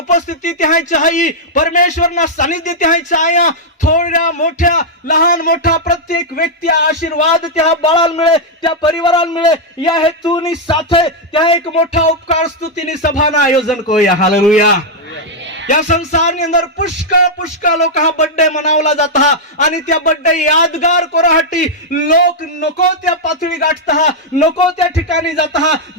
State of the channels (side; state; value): both; normal; correlation -0.04